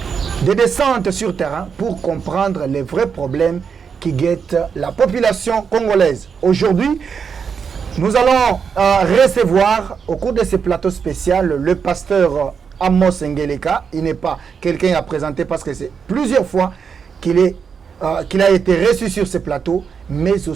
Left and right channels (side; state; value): left; quieter; 6.4 dB